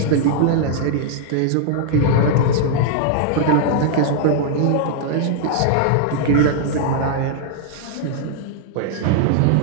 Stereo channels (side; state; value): both; different; correlation -0.01